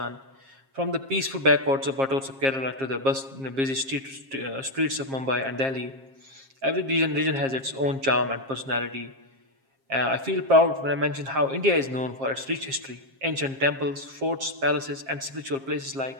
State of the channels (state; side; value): late; left; 7.5 ms